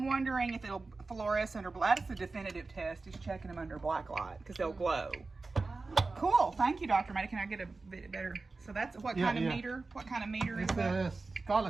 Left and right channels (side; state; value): left; quieter; 3.7 dB